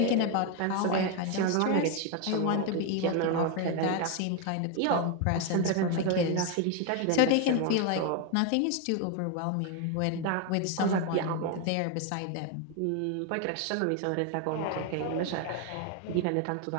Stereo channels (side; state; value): both; different; correlation 0.01